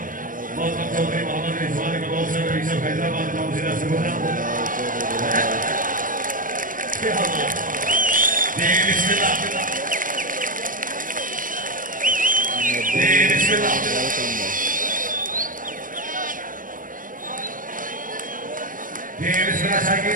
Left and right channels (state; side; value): late; left; 0.39 ms